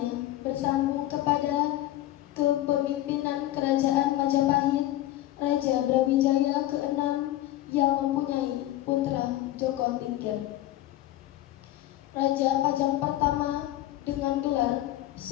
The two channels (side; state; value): right; quieter; 14.9 dB